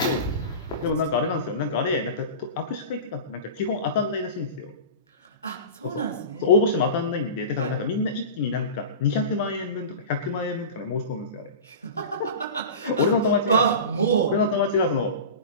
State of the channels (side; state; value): both; inverted; correlation -0.31